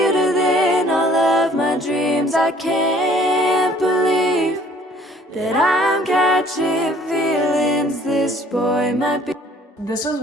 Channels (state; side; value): normal; both; correlation 0.56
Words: than all of my dreams. I can't believe that I'm catching feelings. This boy might be. This was